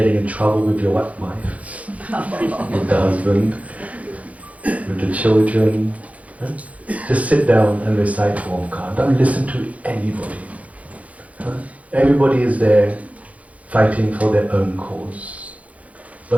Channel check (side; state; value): left; late; 0.067 ms